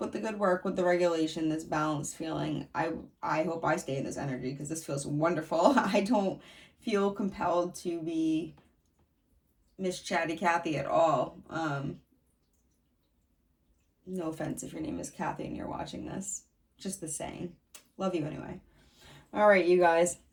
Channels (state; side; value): identical; both; correlation 1.00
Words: the good work, with the regulation, this balanced feeling. I hope I stay in this energy because this feels wonderful. I don't feel compelled to be Miss Chatty Cathy at all. No offense if your name is Kathy and you're watching this. Just the saying. Love you anyway. All right, you guys.